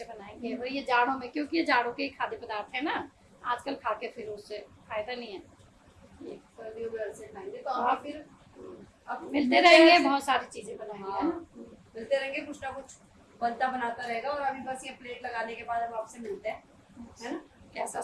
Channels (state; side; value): identical; both; correlation 1.00